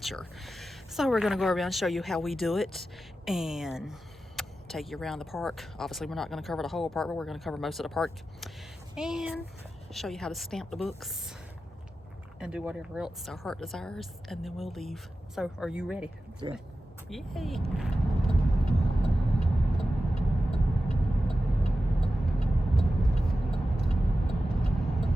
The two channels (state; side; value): normal; both; correlation 0.92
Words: So we're gonna go around and show you how we do it and take you around the park. Obviously we're not gonna cover the whole park, but we're gonna cover most of the park and show you how to stamp the books and do whatever else our heart desires, and then we'll leave. So, are you ready? Yeah. Yay!